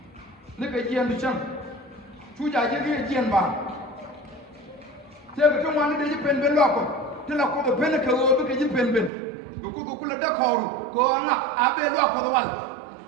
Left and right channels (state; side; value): drops out; left; at 9.1 s